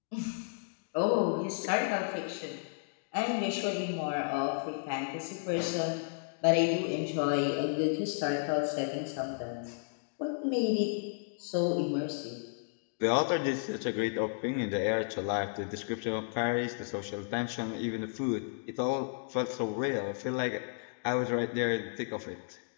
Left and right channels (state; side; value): silent; right; digital silence